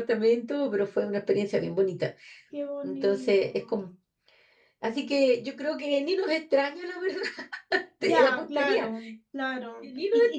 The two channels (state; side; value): identical; both; correlation 1.00